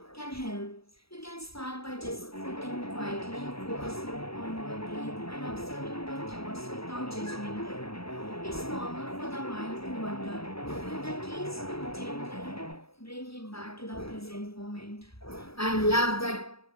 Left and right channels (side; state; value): right; late; 0.77 ms